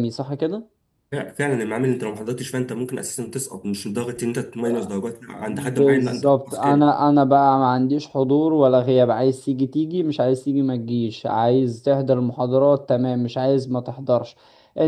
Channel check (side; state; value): both; identical; correlation 1.00